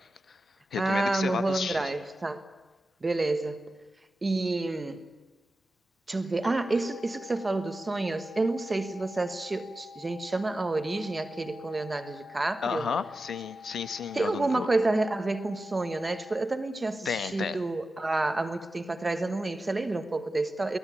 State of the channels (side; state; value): both; normal; correlation 0.92